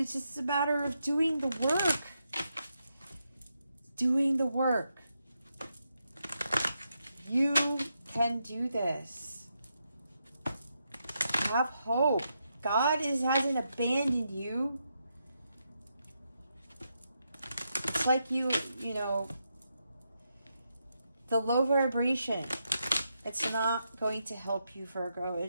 just a matter of doing the work. Doing the work. You can do this. Have hope. God hasn't abandoned you. It's like you know, the low vibration. It's not going to help you, Virgo.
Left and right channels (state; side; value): inverted; both; correlation -0.83